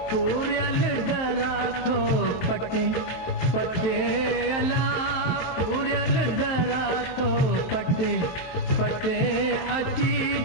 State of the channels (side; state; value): right; late; 23 ms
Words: पूरल दरा थो पटे पटे अला पूरल दरा थो पटे पटे अची